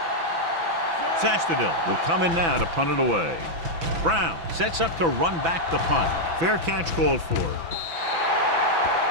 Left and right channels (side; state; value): left; late; 6.0 ms